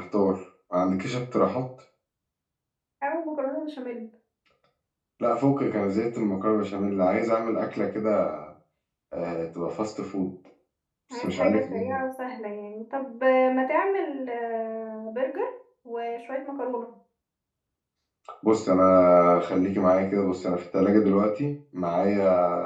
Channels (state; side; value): identical; both; correlation 1.00